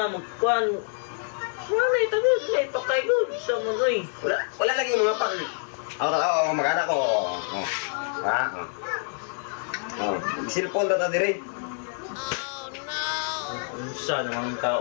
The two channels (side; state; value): right; silent; 56 dB below the other